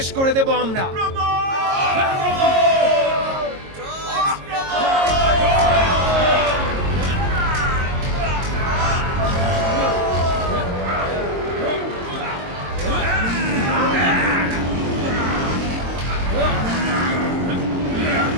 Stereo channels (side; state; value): left; late; 22 ms